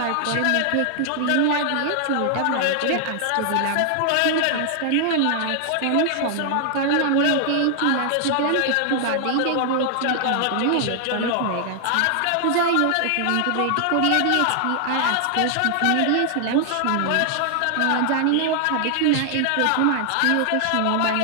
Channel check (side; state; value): both; different; correlation 0.00